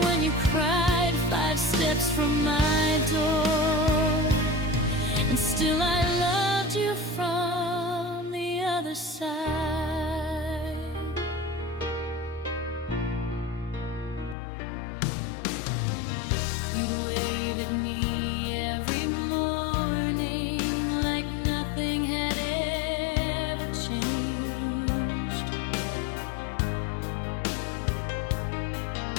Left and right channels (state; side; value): drops out; right; at 14.4 s